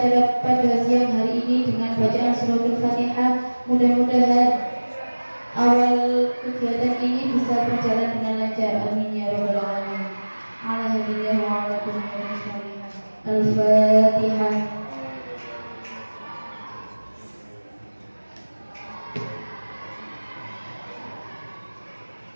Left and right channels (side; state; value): both; inverted; correlation -1.00